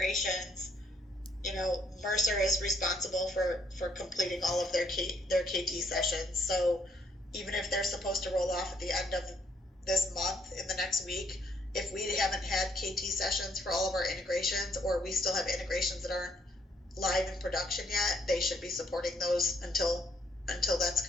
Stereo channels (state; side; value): normal; both; correlation 0.69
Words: Mercer is responsible for completing all of their KT sessions. So even if they're supposed to roll off at the end of this month in the next week, if we haven't had KT sessions for all of our integrations, or we still have integrations that aren't live in production yet, they should be supporting those until that's